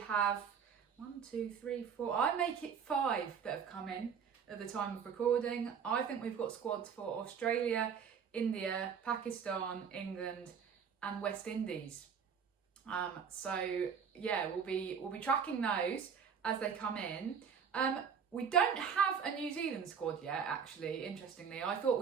1, 2, 3, 4, I make it 5 that have come in at the time of recording. I think we've got squads for Australia, India, Pakistan, England and West Indies. So yeah, we'll be tracking those as they come in. We don't have a New Zealand squad yet, actually, interestingly. I thought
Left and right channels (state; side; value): quieter; left; 6.9 dB